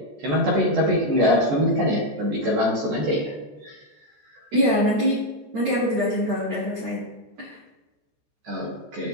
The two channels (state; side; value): late; left; 14 ms